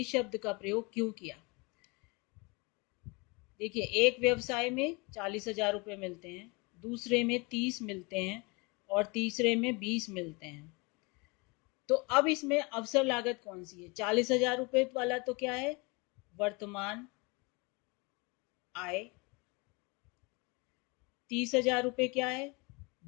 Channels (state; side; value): quieter; right; 28.2 dB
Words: शब्द का प्रयोग क्यों किया। देखिए, एक व्यवसाय में 40,000 रुपये मिलते हैं, दूसरे में 30 मिलते हैं, और तीसरे में 20 मिलते हैं। तो अब इसमें अवसर लागत कौन सी है? 40,000 रुपये वाला तो क्या है? वर्तमान आय। 30,000 रुपये क्या है?